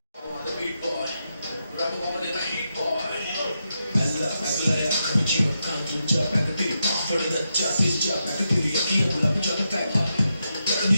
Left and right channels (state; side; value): inverted; both; correlation -0.85